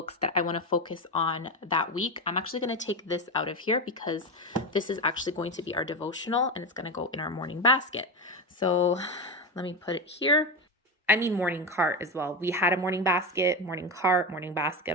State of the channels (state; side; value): normal; both; correlation 0.17